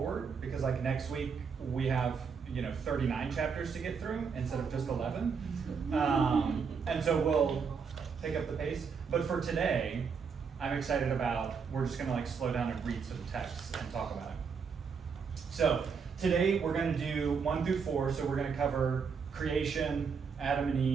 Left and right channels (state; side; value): quieter; left; 5.9 dB